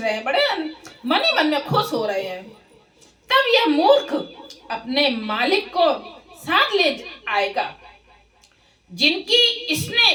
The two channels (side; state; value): both; identical; correlation 1.00